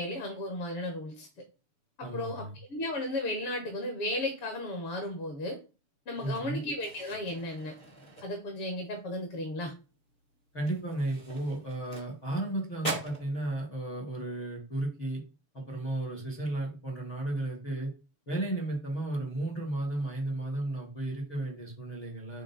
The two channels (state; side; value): late; right; 6.9 ms